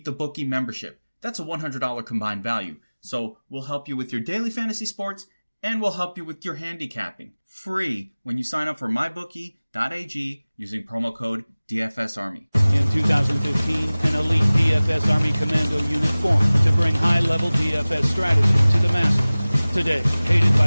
the Bookie membership. That's a $100 combined value. So we'll help you with your daily fantasy sports and we'll help you with your handicapping. Free when you sign up for mybookie.ag using promo code DFSArmy. In 2015, an elite DFS Army Commando unit formed to bring high-level DFS strategy to the masses. Today, hated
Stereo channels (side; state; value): both; inverted; correlation -0.99